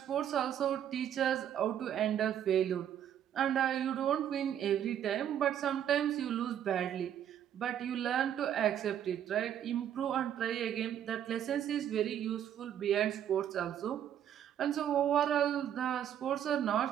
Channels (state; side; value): quieter; left; 10.0 dB